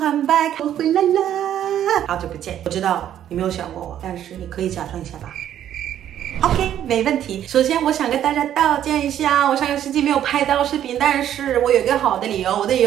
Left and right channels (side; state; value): left; quieter; 10.8 dB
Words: back. 我回来了，好久不见。我知道你没有想过我，但是你可以假装一下吧。OK， 没问题。首先，我想跟大家道歉一下，我上个星期没有拍到视频，但是我有一个好的理由。我的理